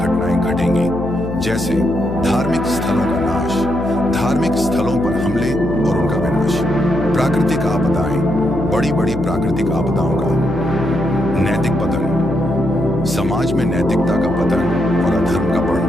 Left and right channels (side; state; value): left; noise; hum, 7 dB below the sound